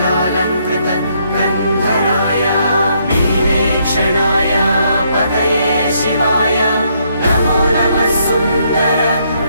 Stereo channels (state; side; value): inverted; both; correlation -0.72